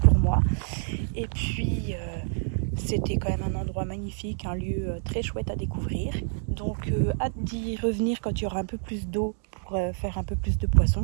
moi. Et puis... c'était quand même un endroit magnifique, un lieu très chouette à découvrir. Donc hâte d'y revenir quand il y aura un peu plus d'eau pour faire un peu plus de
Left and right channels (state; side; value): silent; left; digital silence